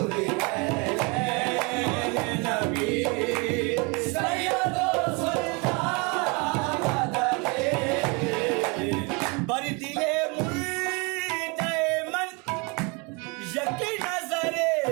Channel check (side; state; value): left; quieter; 30.2 dB